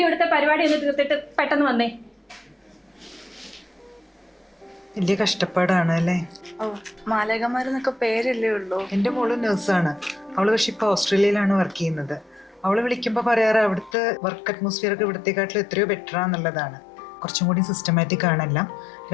ഇവിടുത്തെ പരിപാടി ഒന്ന് തീർത്തിട്ട് പെട്ടെന്ന് വന്നേ. വലിയ കഷ്ടപ്പാടാണ് അല്ലേ? ഓ, മാലകന്മാരെന്നൊക്കെ പേരല്ലേ ഉള്ളൂ. എൻ്റെ മോള് നഴ്സാണ്. അവള് പക്ഷെ ഇപ്പൊ ഓസ്ട്രേലിയയിലാണ് വർക്ക് ചെയ്യുന്നത്. അവള് വിളിക്കുമ്പോൾ പറയാറ് അവിടുത്തെ വർക്ക് അറ്റ്മോസ്ഫിയർ ഒക്കെ ഇവിടത്തെക്കാട്ടിലും എത്രയോ ബെറ്റർ ആണെന്നുള്ളതാണ്. കുറച്ചും കൂടി സിസ്റ്റമാറ്റിക് ആണെല്ലാം.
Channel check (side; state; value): right; drops out; at 14.0 s